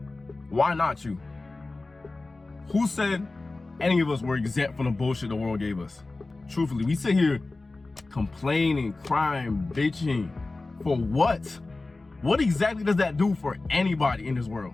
Why not you? Who said any of us were exempt from the bullshit the world gave us? Truthfully, we sit here complaining, crying, bitching. For what? What exactly does that do for anybody in this world?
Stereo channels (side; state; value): right; quieter; 3.3 dB